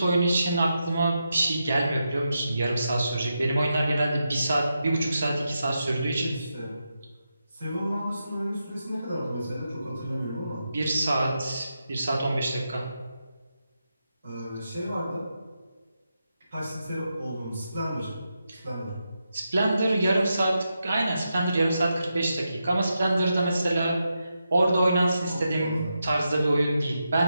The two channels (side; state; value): both; inverted; correlation -0.86